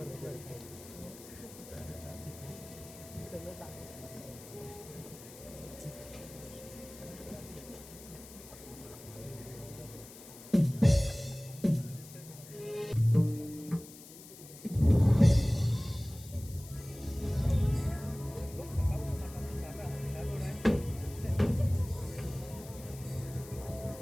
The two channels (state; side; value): noise; left; hiss, 17 dB below the sound